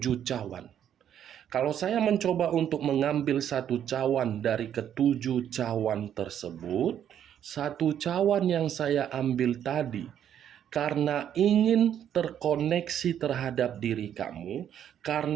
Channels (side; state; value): left; quieter; 9.7 dB